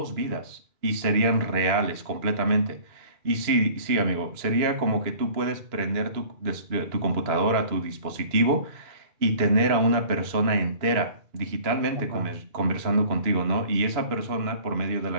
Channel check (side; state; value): left; late; 2.9 ms